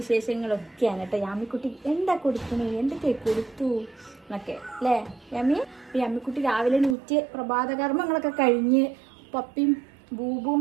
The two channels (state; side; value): drops out; left; at 7.0 s